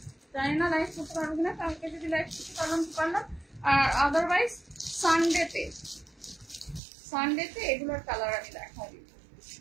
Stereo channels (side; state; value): left; drops out; at 6.8 s